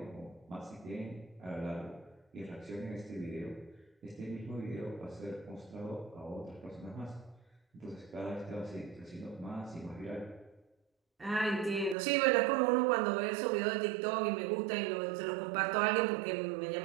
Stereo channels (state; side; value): drops out; left; at 12.0 s